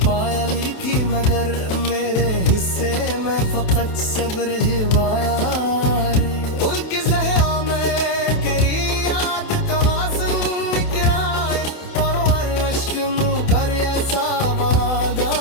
लिखी, मगर मेरे हिस्से में फकत सब्र हिवाया। उनके ज़हरा में तेरी याद का वासन निकराए, और हर अश्क मुँह कर ऐसा बड़ा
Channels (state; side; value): late; right; 28 ms